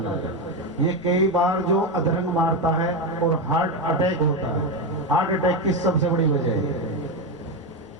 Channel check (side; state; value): left; noise; rumble, 25 dB below the sound